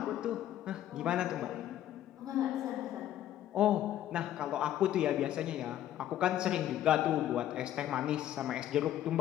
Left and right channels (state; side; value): quieter; right; 12.1 dB